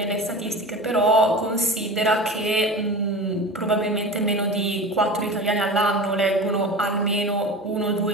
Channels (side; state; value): both; normal; correlation 0.32